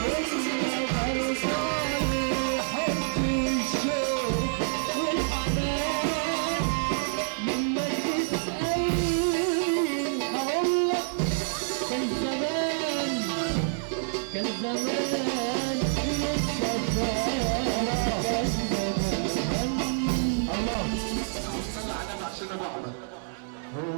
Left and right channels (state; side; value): silent; left; 60 dB below the other